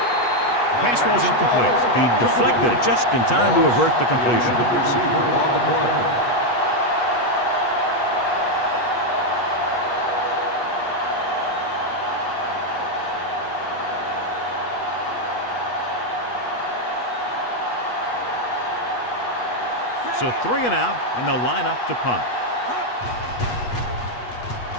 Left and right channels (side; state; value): right; late; 8.3 ms